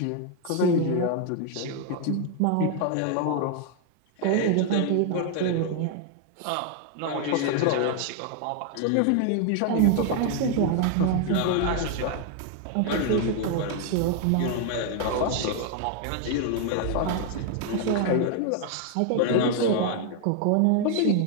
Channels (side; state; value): both; different; correlation 0.00